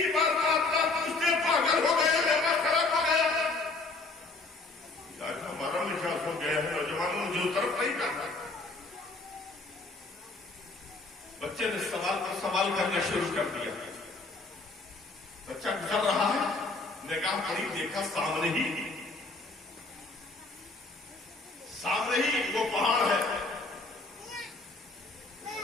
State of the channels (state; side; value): quieter; right; 3.5 dB